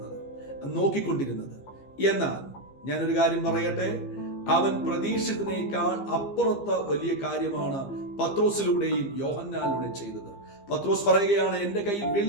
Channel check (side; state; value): right; late; 15 ms